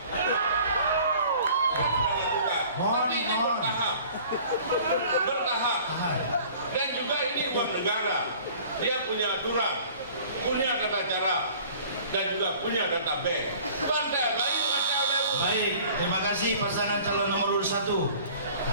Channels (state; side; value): inverted; both; correlation -0.49